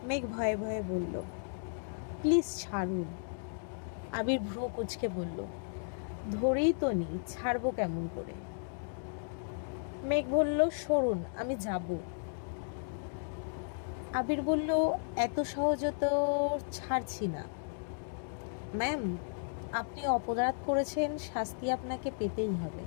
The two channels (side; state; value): right; silent; digital silence